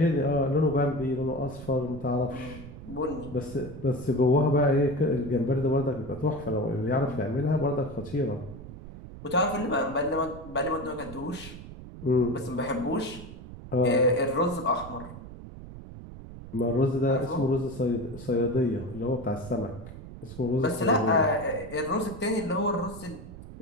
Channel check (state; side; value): noise; right; rumble, 13 dB below the sound